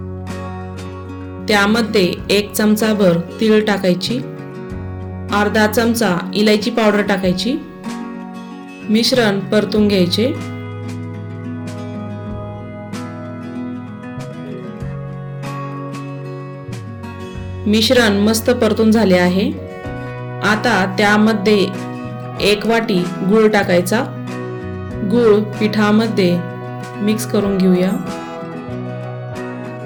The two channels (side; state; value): both; identical; correlation 1.00